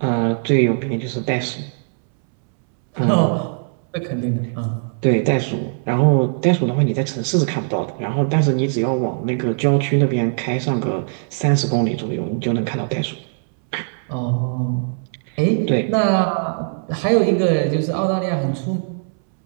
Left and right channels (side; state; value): left; silent; 66 dB below the other